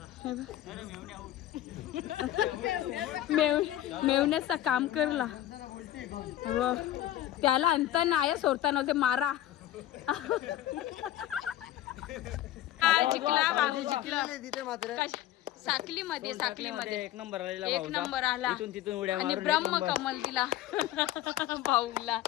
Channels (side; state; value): right; quieter; 13.4 dB